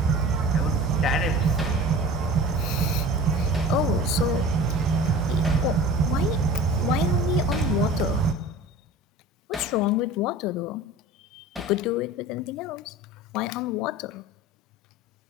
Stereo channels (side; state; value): both; normal; correlation 0.39